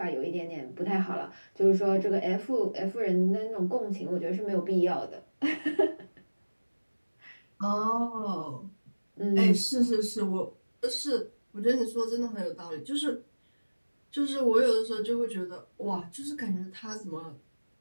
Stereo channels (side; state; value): both; inverted; correlation -1.00